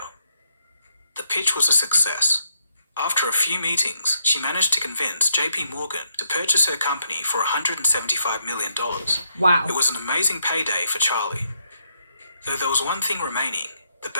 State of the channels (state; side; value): inverted; both; correlation -0.76